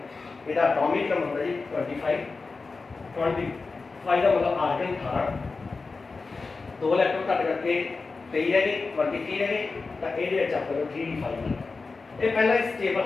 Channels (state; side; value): quieter; right; 4.1 dB